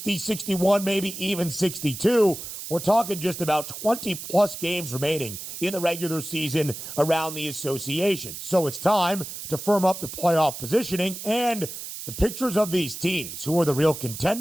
61, maybe even 62. We're talking just about 20-plus games remaining in the regular season around the association. So it's time to firm up the playoff positioning and the pictures of these teams, who are the real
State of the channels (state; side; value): noise; right; hiss, 9 dB below the sound